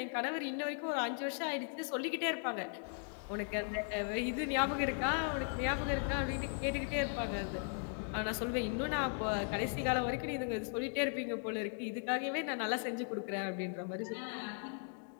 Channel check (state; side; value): silent; right; 53 dB below the other